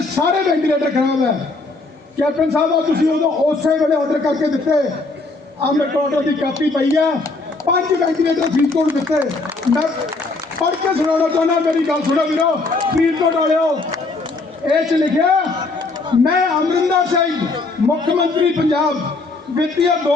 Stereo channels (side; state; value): right; quieter; 3.5 dB